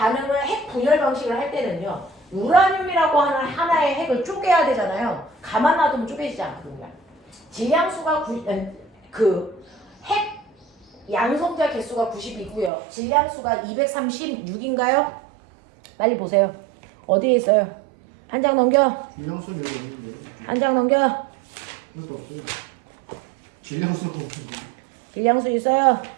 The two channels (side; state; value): left; drops out; at 12.7 s